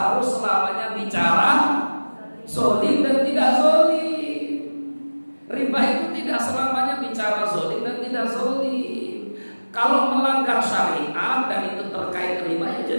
selamanya bicara zolim dan tidak zolim. Riba itu tidak selamanya bicara zolim dan tidak zolim. Kalau melanggar syariat dan itu terkait riba ya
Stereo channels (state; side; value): inverted; both; correlation -1.00